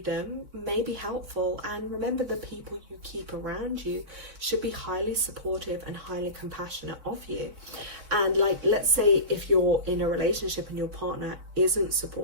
them may be helpful. And remember, the people you keep around you should be highly supportive and highly compassionate of you. And like, let's say if you're in a relationship and your partner isn't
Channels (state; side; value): late; left; 3.6 ms